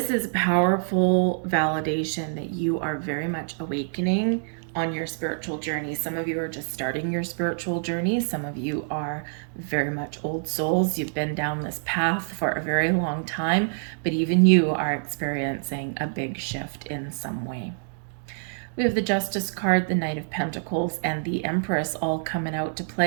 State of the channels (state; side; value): silent; left; digital silence